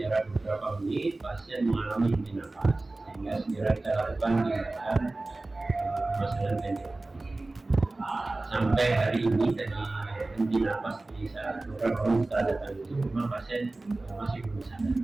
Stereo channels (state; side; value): quieter; left; 3.0 dB